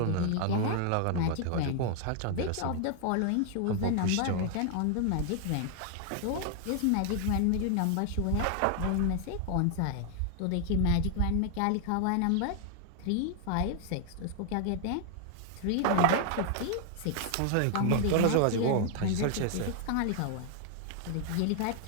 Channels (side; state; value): both; different; correlation 0.00